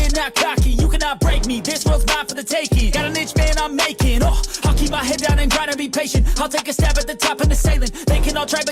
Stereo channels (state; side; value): identical; both; correlation 1.00